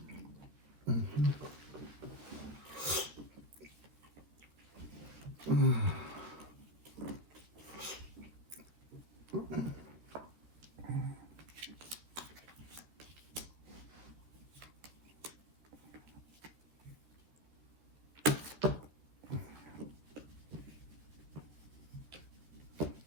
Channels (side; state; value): left; late; 13 ms